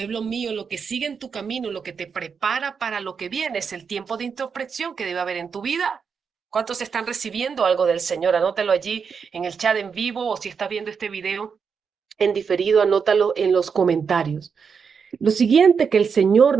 mío, lo que sigue en tu camino, lo que te prepara para lo que viene, es el tiempo de introspección que debe haber en tu vida. ¿Cuántos están recibiendo algo del Señor? Anótalo allí en el chat en vivo o si estás viendo este video en diferido, anótalo en los comentarios. Lo siguiente que el Señor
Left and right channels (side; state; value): left; quieter; 6.1 dB